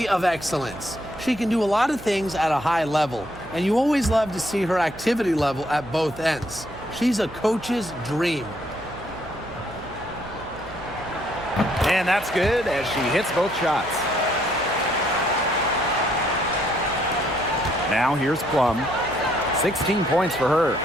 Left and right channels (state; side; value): noise; right; hum, 17 dB below the sound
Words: of excellence. She can do a lot of things at a high level, and you always love to see her activity level at both ends. She's a coach's dream. And that's good as she hits both shots. Now here's Plum. 16 points for her.